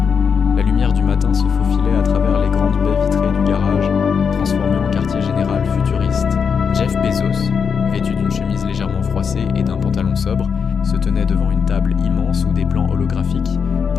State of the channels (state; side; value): quieter; right; 6.4 dB